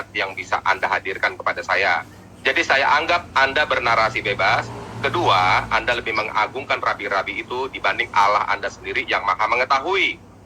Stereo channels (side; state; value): both; identical; correlation 1.00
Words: yang bisa Anda hadirkan kepada saya. Jadi saya anggap Anda bernarasi bebas. Kedua, Anda lebih mengagungkan rabi-rabi itu dibanding Allah Anda sendiri yang maha mengetahui.